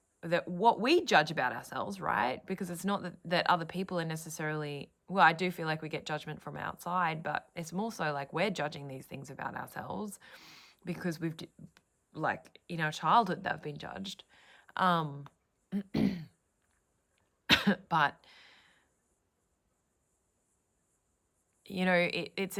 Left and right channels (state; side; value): identical; both; correlation 1.00